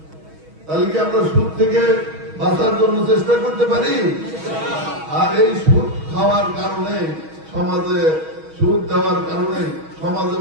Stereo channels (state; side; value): late; left; 6.3 ms